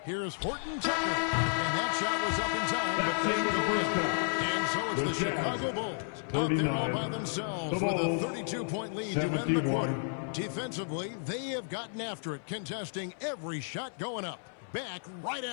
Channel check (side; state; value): right; silent; 56 dB below the other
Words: Here's Horton Tucker. And that shot was up in time. But they go in. And so it's the Chicago Bulls out there all by themselves with a 32-point lead to end the quarter. Defensively, they have gotten after it, contesting every shot going up. Back right